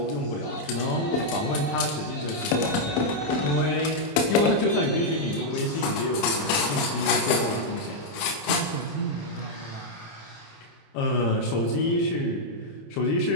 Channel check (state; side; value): late; right; 27 ms